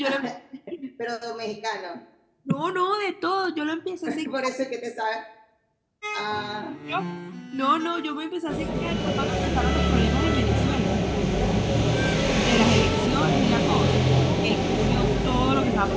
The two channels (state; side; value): identical; both; correlation 1.00